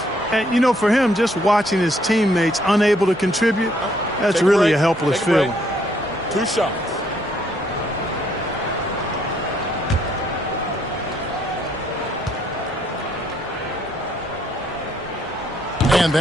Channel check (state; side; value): normal; both; correlation 0.69